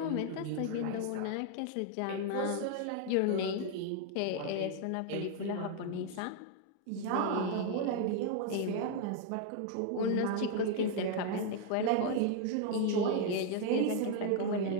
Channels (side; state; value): both; different; correlation 0.00